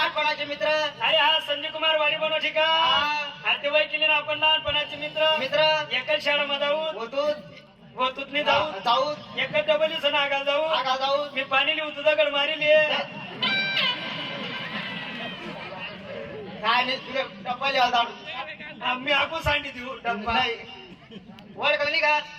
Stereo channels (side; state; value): both; identical; correlation 1.00